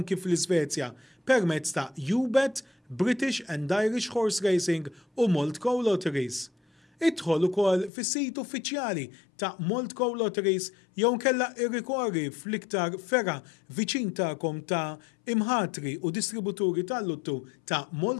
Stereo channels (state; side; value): drops out; right; at 7.9 s